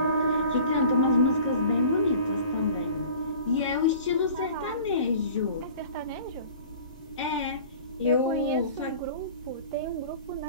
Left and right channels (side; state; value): both; inverted; correlation -0.44